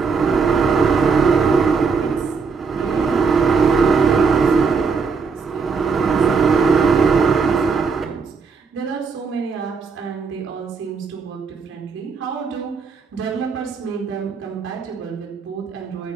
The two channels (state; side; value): quieter; left; 5.2 dB